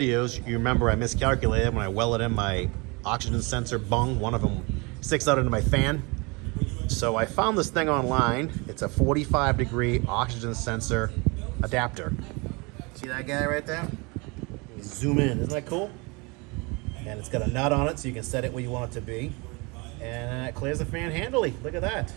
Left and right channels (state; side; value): quieter; left; 28.1 dB